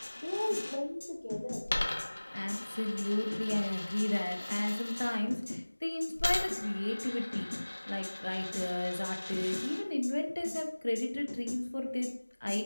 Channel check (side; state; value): both; inverted; correlation -1.00